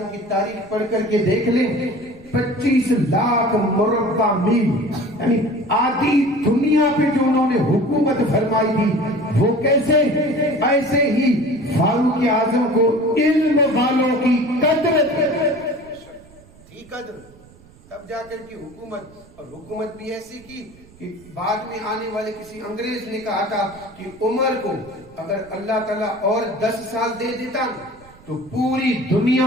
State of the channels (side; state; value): right; noise; rumble, 25 dB below the sound